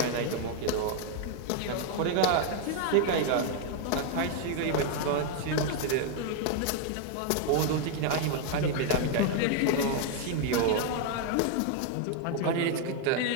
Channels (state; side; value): different; both; correlation 0.00